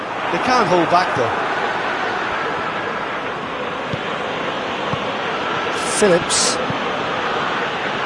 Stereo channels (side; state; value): both; identical; correlation 1.00